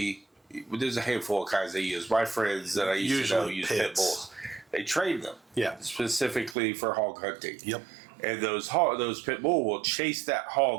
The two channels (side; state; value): left; drops out; at 6.6 s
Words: there's a handful of kinds they use. My friends that I used to know use pit bulls. They train them. Yeah. Specifically for hog hunting. Yep. And those pit bull will chase that